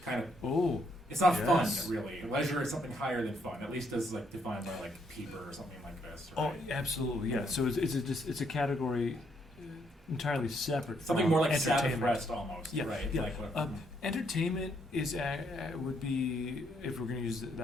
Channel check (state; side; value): normal; both; correlation 0.73